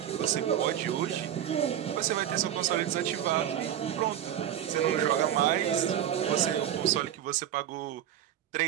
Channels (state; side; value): quieter; left; 10.7 dB